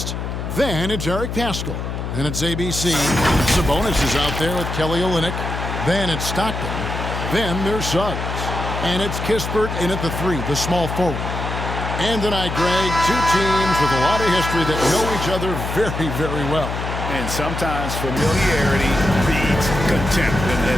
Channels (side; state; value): left; noise; hum, 5 dB below the sound